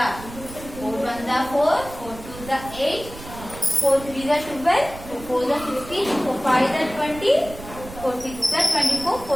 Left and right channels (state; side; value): noise; right; rumble, 14 dB below the sound